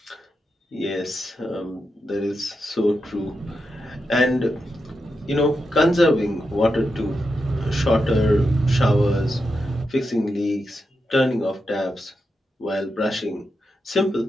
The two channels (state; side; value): normal; both; correlation 0.87